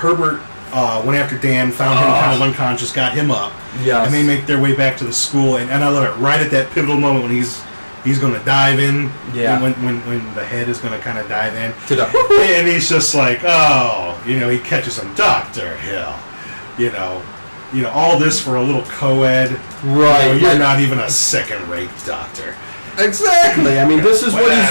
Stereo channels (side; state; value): both; inverted; correlation -1.00